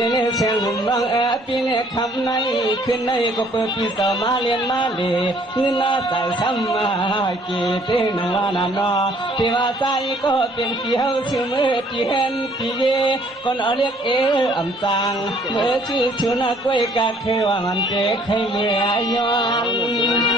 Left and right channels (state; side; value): normal; both; correlation 0.61